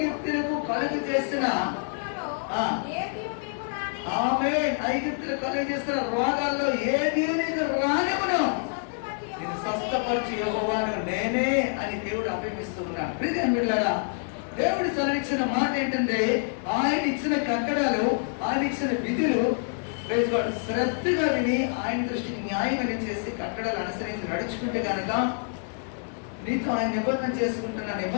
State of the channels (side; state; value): right; silent; 60 dB below the other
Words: కలుగు చేసిన ఐగుప్తులకు కలుగు చేసిన రోగాల్లో ఏది నీకు రానివ్వను, నేను స్వస్థపరిచి యెహోవాను నేనే అని దేవుడు అభిమిస్తున్నాడు. ప్రియమైన బిడ్డలారా, దేవుడు సెలవిచ్చిన మాట ఏంటంటే ఆయన ఇచ్చిన కట్టడాలు, ఆయన ఇచ్చిన విధులు శ్రద్ధగా విని ఆయన దృష్టికి న్యాయమని చేసి కట్టడాలు అనుసరించి నడుచుకుంటే కనుక నీతో ఆయన నిబంధన చేసుకుంటున్న